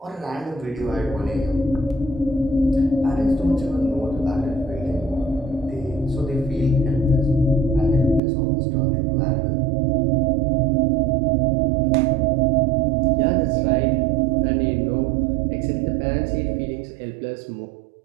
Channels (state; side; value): drops out; left; at 8.2 s